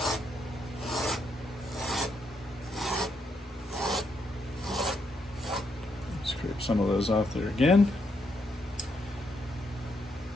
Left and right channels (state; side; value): normal; both; correlation 0.78